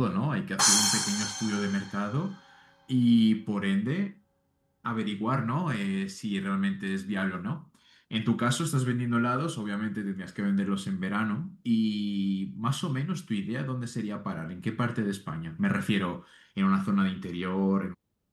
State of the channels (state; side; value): identical; both; correlation 1.00